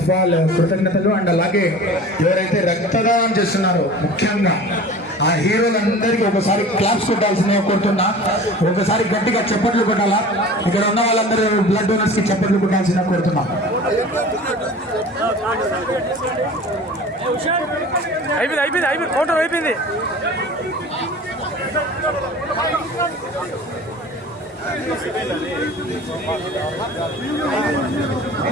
ఆఫ్ ఆల్ కృతజ్ఞతలు. అండ్ అలాగే ఎవరైతే రక్తదానం చేస్తున్నారో ముఖ్యంగా ఆ హీరోలందరికీ ఒకసారి క్లాప్స్ కొట్టాల్సిందిగా కోరుతున్నా. ఒకసారి గట్టిగా చప్పట్లు కొట్టాలా. ఇక్కడ ఉన్న వాళ్ళందరూ బ్లడ్ డోనర్స్ కి చప్పట్లు కొట్టాల్సిందిగా కోరుతున్నా. అయిపోయింది ఫోటో అయిపోయింది.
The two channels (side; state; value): both; normal; correlation 0.40